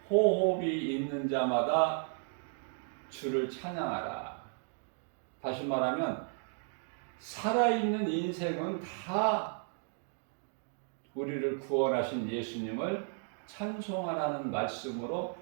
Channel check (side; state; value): left; silent; 55 dB below the other